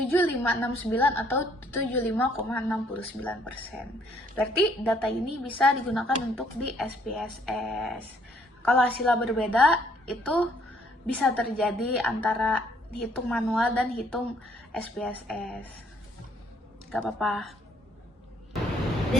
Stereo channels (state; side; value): normal; both; correlation 0.66